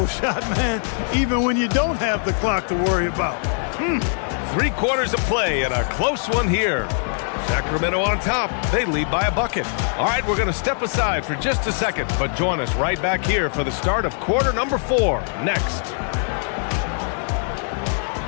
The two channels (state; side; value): silent; right; 57 dB below the other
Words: shot, man, even when you don't have the clock to worry about. 3 quarters of play and a close one here. Sacramento on top. They lead by a bucket. All right, we're going to step aside for just a second, but join us right back here for the start of quarter number 4 next.